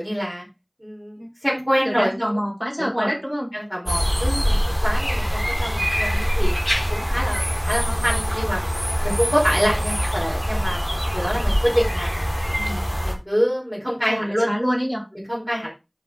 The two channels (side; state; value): both; identical; correlation 1.00